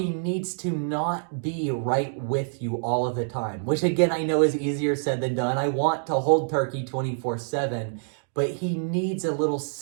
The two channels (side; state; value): left; silent; 61 dB below the other